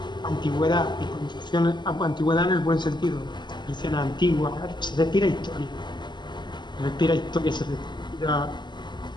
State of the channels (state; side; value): late; right; 0.21 ms